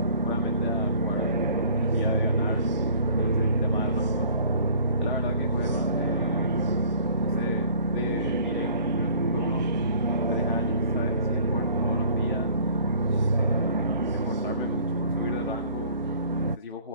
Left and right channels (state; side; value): inverted; both; correlation -0.52